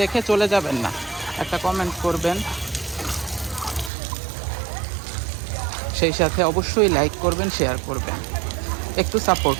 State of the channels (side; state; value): left; drops out; at 3.9 s